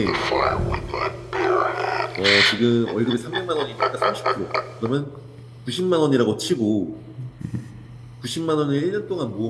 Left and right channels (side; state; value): both; identical; correlation 1.00